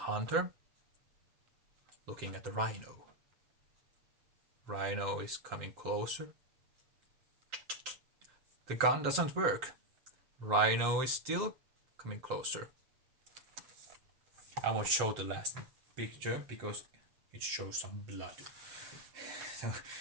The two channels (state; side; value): late; left; 7.6 ms